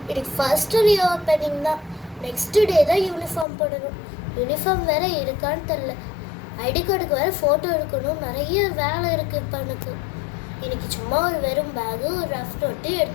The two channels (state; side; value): drops out; right; at 3.5 s